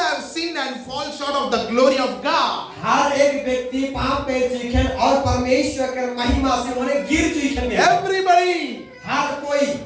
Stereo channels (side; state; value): both; identical; correlation 1.00